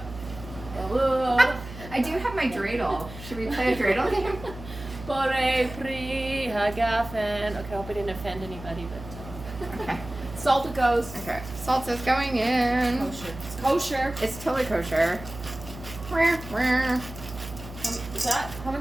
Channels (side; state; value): right; noise; hum, 13 dB below the sound